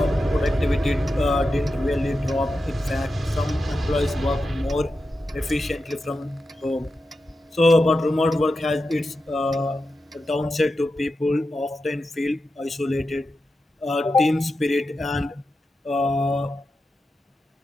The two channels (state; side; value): normal; both; correlation 0.90